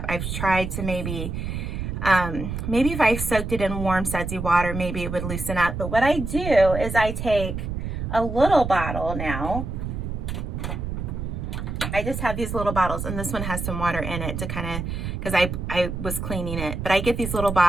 I've tried to maybe if I soaked it in warm sudsy water, maybe it would loosen up. But what I do is I take a little bottle now. I just have these little bottles, and this one has some water in it to kind of, because I was cleaning it. But I get these little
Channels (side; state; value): right; noise; rumble, 4 dB below the sound